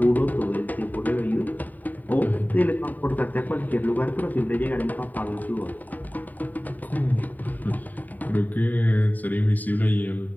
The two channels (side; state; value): right; late; 0.084 ms